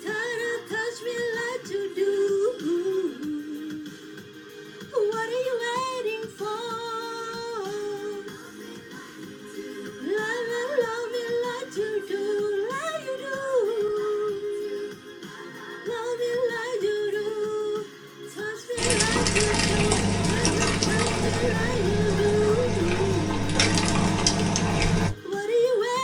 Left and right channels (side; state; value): both; identical; correlation 1.00